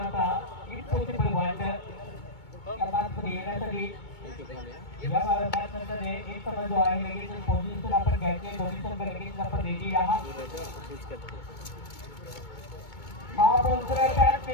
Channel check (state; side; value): late; right; 2.2 ms